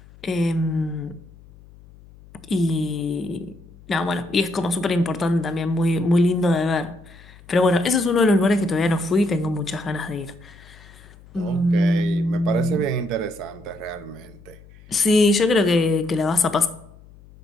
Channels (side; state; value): left; noise; hum, 23 dB below the sound